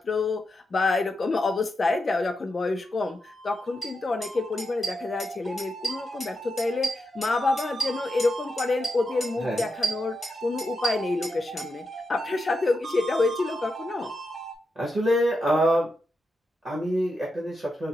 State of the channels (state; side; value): normal; both; correlation 0.86